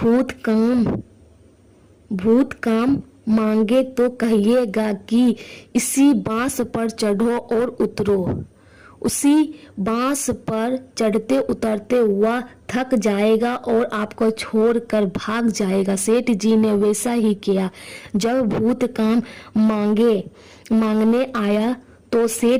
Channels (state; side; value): identical; both; correlation 1.00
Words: काम मांगे तो कहिएगा कि इसी बांस पर चढ़ो और उतरो। उसी बांस पर चढ़ते उतरते हुआ थक जाएगा और आपको छोड़कर भाग जाएगा। सेठ जी ने वैसा ही किया। जब भूत काम मांगने आया तो